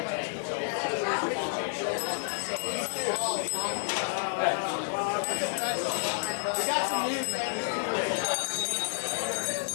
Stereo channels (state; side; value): silent; right; digital silence